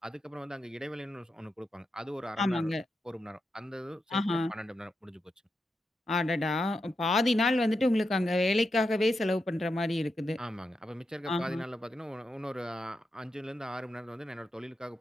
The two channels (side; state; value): both; normal; correlation 0.87